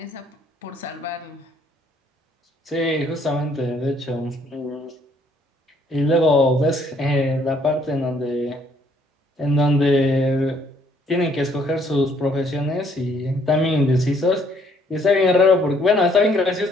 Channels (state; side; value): normal; both; correlation 0.66